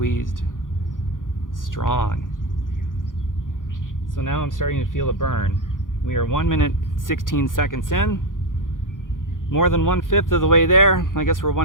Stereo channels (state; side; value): late; right; 0.89 ms